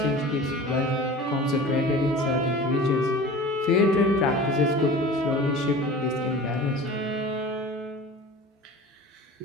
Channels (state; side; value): normal; both; correlation 0.39